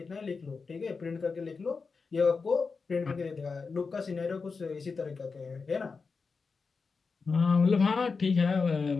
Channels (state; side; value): quieter; right; 4.7 dB